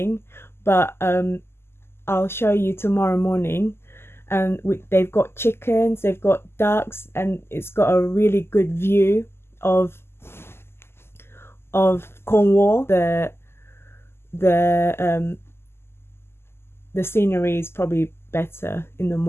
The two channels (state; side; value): late; right; 0.12 ms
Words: but I'll show you tomorrow morning. And they've got chickens, they've got ducks, and it's got a really good view of Cornwall. The scenery is probably better in the